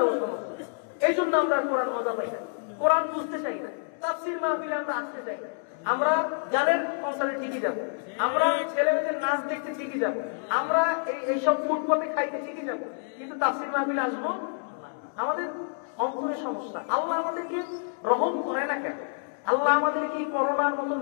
সমস্যা। এই জন্য আমরা কোরআন মজা পাই না, কোরআন বুঝতে চাই না, তাফসীর মাহফিলে আমরা আসতে চাই না। আমরা গানের কনসার্টে ঠিকই যাবো, আমরা ছেলেমেয়েদের নাচ দেখতে ঠিকই যাবো, আমরা এইসব ফুটপাতে খাইতে ঠিকই যাবো, কিন্তু তাফসীর মাহফিলে আসবো আমাদের অন্তরে সমস্যা। আল্লাহ আমাদেরকে রহম করে না কেন? আল্লাহ আমাদেরকে করোনার মতন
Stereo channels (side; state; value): right; silent; 59 dB below the other